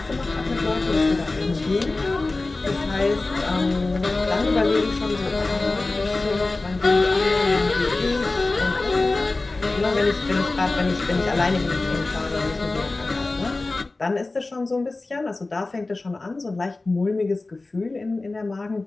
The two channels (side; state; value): right; quieter; 3.3 dB